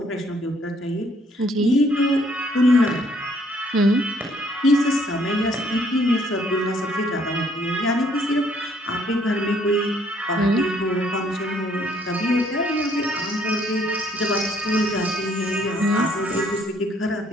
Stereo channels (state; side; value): normal; both; correlation 0.65